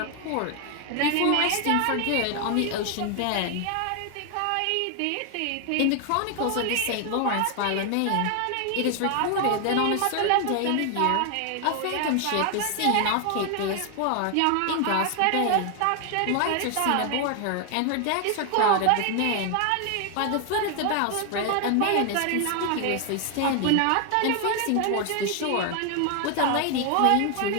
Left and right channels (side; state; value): both; different; correlation 0.00